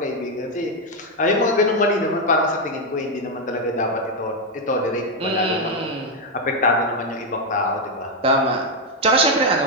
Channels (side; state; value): both; normal; correlation 0.03